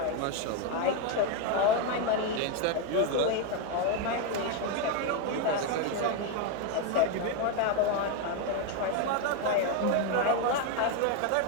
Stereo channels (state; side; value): different; both; correlation 0.02